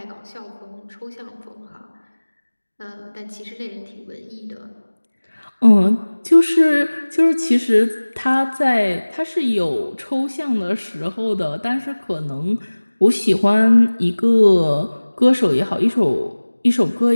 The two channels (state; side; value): inverted; both; correlation -1.00